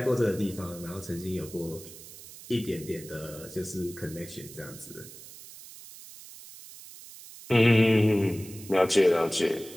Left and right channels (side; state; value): right; noise; hiss, 17 dB below the sound